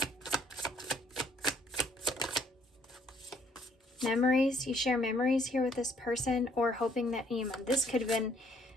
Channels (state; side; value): normal; both; correlation 0.64